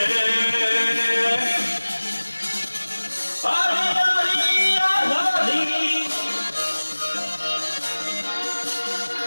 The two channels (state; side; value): inverted; both; correlation -1.00